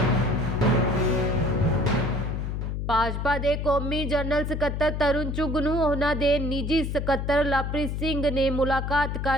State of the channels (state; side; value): noise; left; hum, 3 dB below the sound